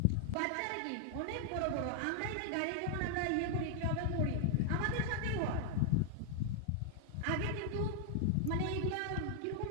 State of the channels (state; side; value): different; both; correlation 0.00